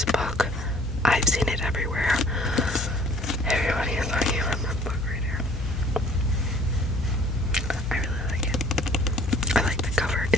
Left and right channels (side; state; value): both; normal; correlation 0.55